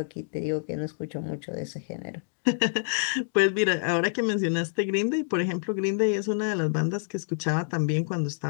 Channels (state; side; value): silent; right; digital silence